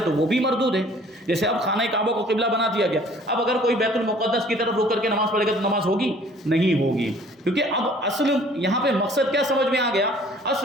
تو وہ بھی مردود ہے۔ جیسے اب خانہ کعبہ کو قبلہ بنا دیا گیا، اب اگر کوئی بیت المقدس کی طرف رخ کر کے نماز پڑھے گا تو نماز ہوگی؟ نہیں ہوگی، کیونکہ اب اصل یہاں پہ مقصد کیا سمجھ میں آ گیا؟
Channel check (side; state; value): both; normal; correlation 0.54